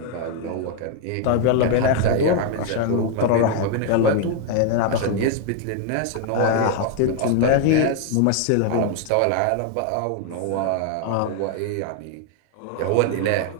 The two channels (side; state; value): both; different; correlation 0.00